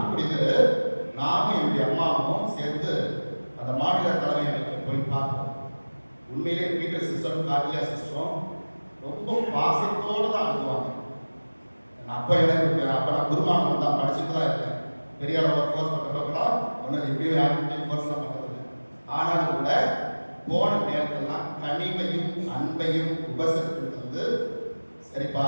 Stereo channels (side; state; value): both; inverted; correlation -1.00